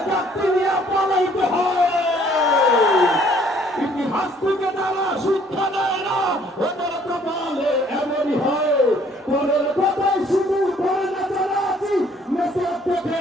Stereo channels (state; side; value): normal; both; correlation 0.61